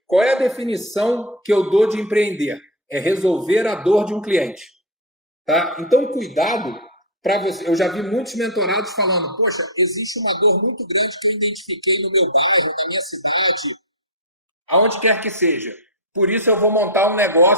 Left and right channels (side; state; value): both; normal; correlation 0.04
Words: Qual é a definição que eu dou de empreender? É resolver a dor de um cliente, tá? Então, cuidado para você. Eu já vi muitos mentorados falando, poxa, existe uma dor muito grande que eu identifiquei no meu bairro, na minha cidade, aonde quer que seja. Por isso eu vou montar um